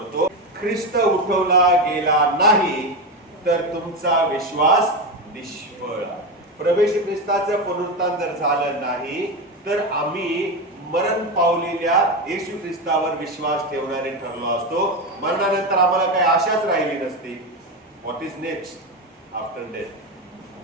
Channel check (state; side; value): normal; both; correlation 0.15